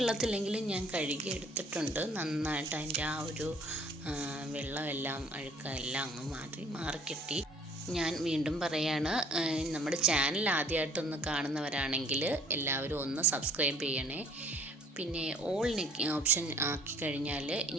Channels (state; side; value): normal; both; correlation 0.56